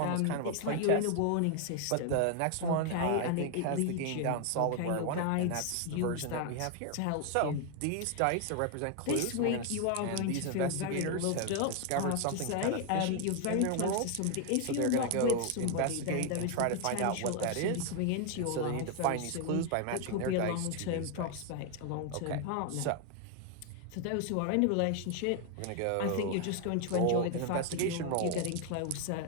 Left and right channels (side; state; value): both; different; correlation 0.01